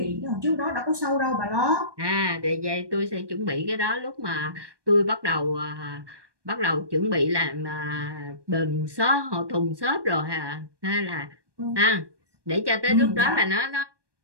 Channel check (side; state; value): left; late; 1.2 ms